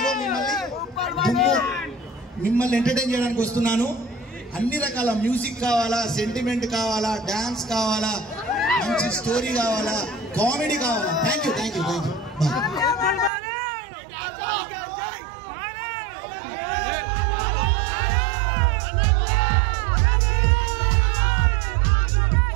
మిమ్మల్ని ఎంటర్టైన్ చేయడానికి వస్తున్నాను. అన్ని రకాల మ్యూజిక్ కావాలా, సెంటిమెంట్ కావాలా, డాన్స్ కావాలా, మంచి స్టోరీ కావాలా, కామెడీ కావాలా. Thank you. బాయ్.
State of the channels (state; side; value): drops out; left; at 13.3 s